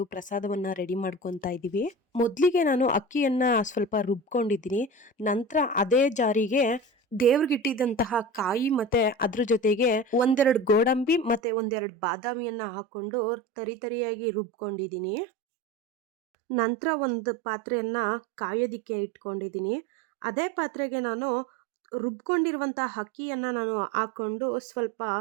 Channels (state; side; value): drops out; left; at 11.4 s